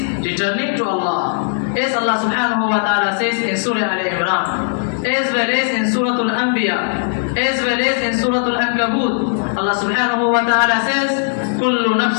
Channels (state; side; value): silent; right; digital silence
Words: returning to Allah. As Allah subhanahu wa ta'ala says in Surah Al-Imran, as well as in Surah Al-Anbiya, as well as in Surah Al-Ankabut, Allah subhanahu wa ta'ala says, Kullu